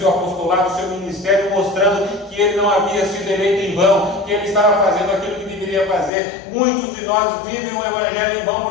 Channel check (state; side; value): drops out; right; at 6.1 s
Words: apostolado, o seu ministério, mostrando que ele não havia sido eleito em vão, que ele estava fazendo aquilo que deveria fazer. Muitos de nós vivem o evangelho em vão